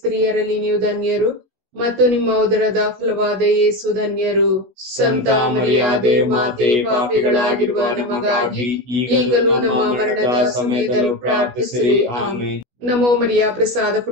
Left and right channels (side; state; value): left; late; 16 ms